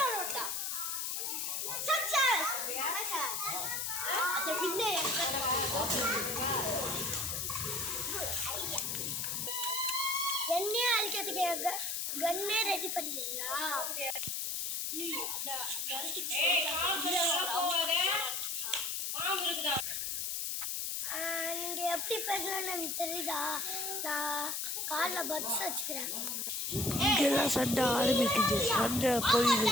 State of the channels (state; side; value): noise; left; hiss, 1 dB below the sound